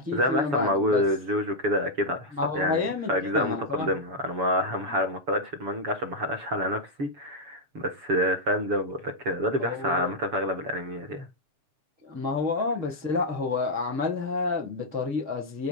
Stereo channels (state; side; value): late; left; 7.1 ms